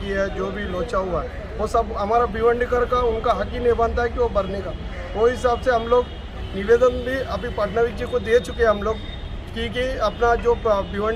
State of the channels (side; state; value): both; identical; correlation 1.00